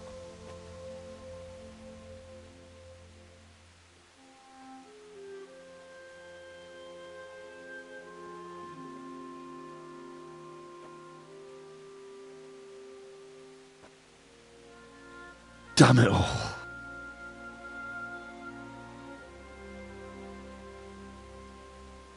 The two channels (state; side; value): identical; both; correlation 1.00